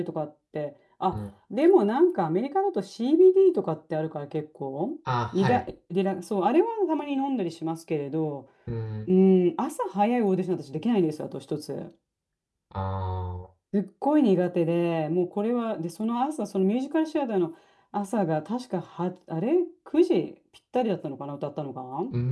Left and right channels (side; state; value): both; identical; correlation 1.00